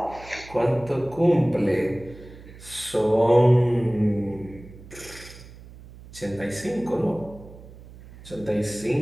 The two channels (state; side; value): noise; right; hum, 19 dB below the sound